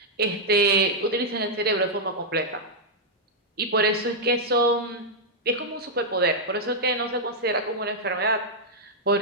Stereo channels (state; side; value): normal; both; correlation -0.05